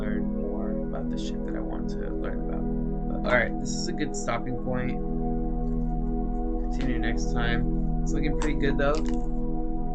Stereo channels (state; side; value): identical; both; correlation 1.00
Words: more about the shit that I want to learn about. But, all right, this is a good stopping point. Continue next time. It's looking pretty good though.